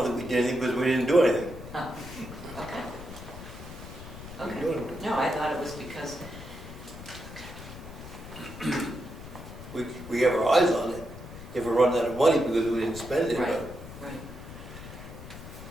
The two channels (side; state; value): left; noise; rumble, 13 dB below the sound